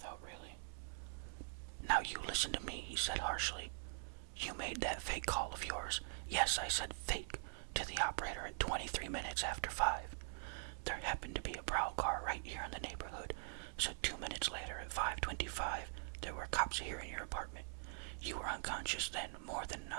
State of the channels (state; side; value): silent; left; digital silence